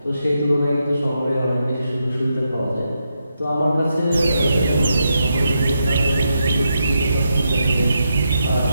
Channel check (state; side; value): inverted; both; correlation -0.83